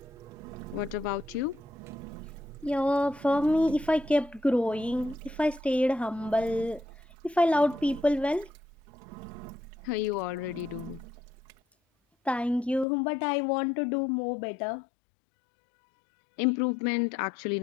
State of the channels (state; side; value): drops out; right; at 12.9 s